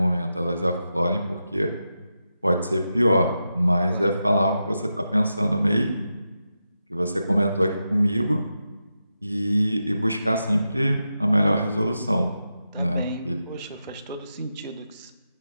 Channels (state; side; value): inverted; both; correlation -0.88